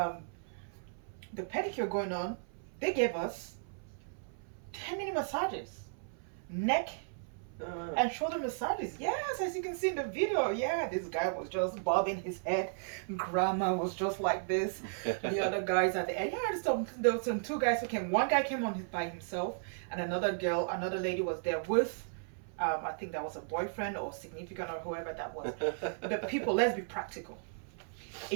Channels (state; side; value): silent; left; 54 dB below the other